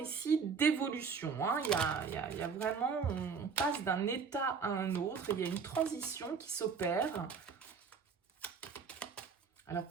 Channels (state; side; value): quieter; left; 5.8 dB